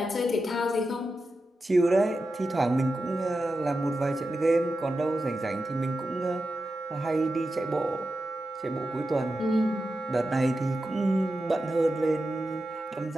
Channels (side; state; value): both; normal; correlation 0.90